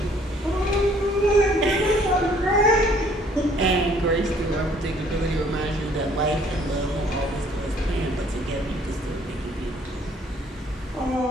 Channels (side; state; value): both; normal; correlation 0.60